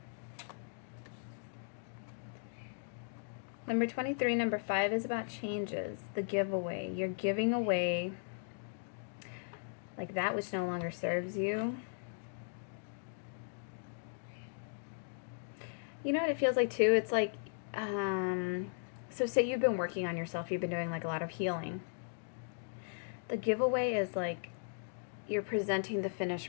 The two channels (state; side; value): silent; right; digital silence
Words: Number 23, number 5 is about changes. The giveaway. You're giving away like that which no longer serves you. You know what it feels like too? It's like, so say you've been working on yourself, you've been doing like a lot of healing. The giveaway is like you're presenting the